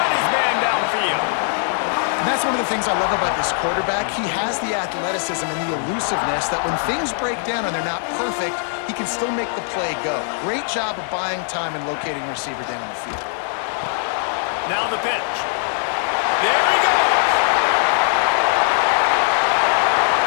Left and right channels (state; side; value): silent; right; 57 dB below the other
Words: his man downfield. And that's one of the things I love about this quarterback. He has the athleticism and the elusiveness that when things break down and they're not perfect, he can still make the play go. Great job of buying time and locating receiver down the field. Now the pitch. There he goes.